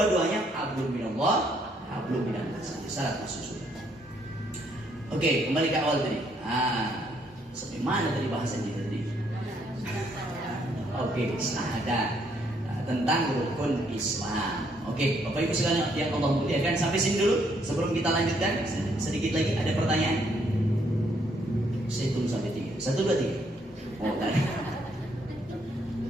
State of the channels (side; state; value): both; normal; correlation 0.71